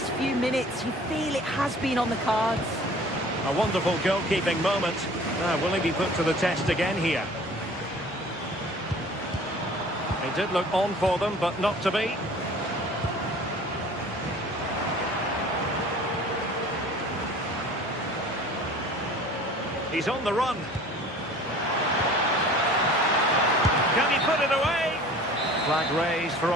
few minutes, you feel it has been on the cards. A wonderful goalkeeping moment. Will he be put to the test again here? He did look on for them, but not to be. He's on the run. Can he put it away? Flag raised for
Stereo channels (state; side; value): normal; both; correlation 0.46